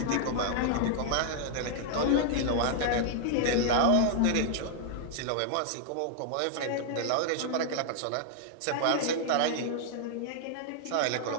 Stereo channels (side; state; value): both; different; correlation -0.01